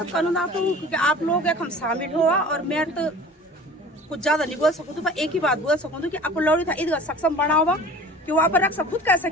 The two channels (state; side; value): normal; both; correlation 0.42